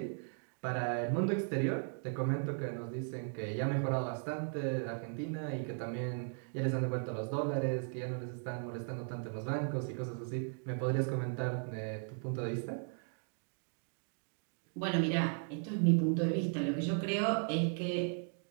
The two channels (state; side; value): silent; left; 53 dB below the other